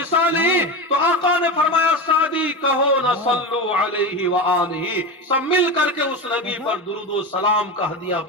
تو آقا نے فرمایا سعدی کہو نہ صلو علیہ وآلہ، سب مل کر کے اس نبی پر درود و سلام کا ہدیہ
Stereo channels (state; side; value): normal; both; correlation 0.21